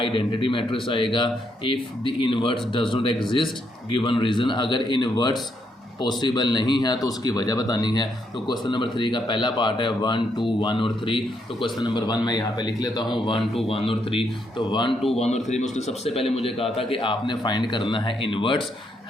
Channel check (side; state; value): both; normal; correlation 0.76